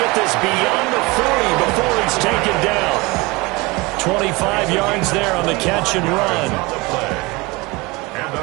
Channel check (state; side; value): quieter; left; 24.1 dB